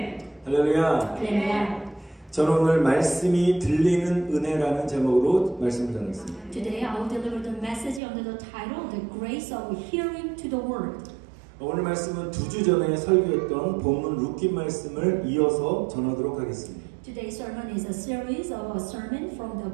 할렐루야. Hallelujah. 저는 오늘 말씀이 들리는 은혜라는 제목으로 말씀을 전했습니다. Today I will deliver the message under the title The Grace of Hearing to the Word. 오늘 말씀은 2주 전에 설교했던 본문 룻기 말씀을 이어서 전하도록 하겠습니다. Today's sermon is a series of a sermon from the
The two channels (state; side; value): drops out; left; at 8.0 s